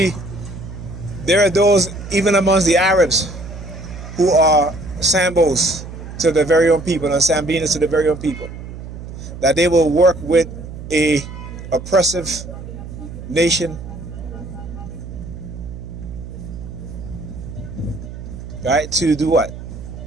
there are those even amongst the Arabs who are Sambos to their very own people and Sambinas to their very own people, that they will work with a oppressive nation, right, to do what?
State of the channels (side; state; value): right; noise; hum, 11 dB below the sound